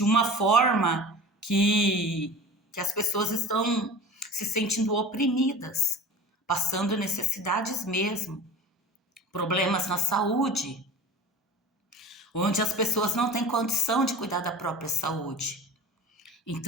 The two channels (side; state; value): both; normal; correlation 0.37